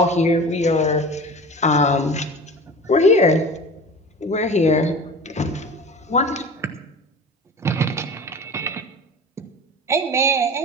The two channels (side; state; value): both; normal; correlation 0.36